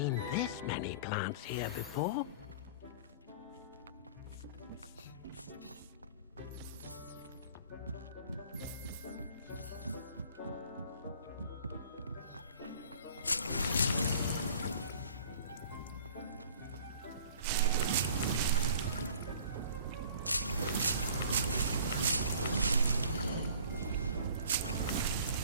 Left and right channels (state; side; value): inverted; both; correlation -0.48